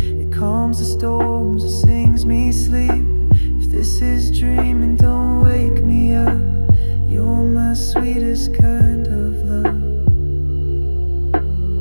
It calms the storms, it sings me sleep. If this is dreaming, don't wake me up. You're my sweetest kind of love.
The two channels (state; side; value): inverted; both; correlation -1.00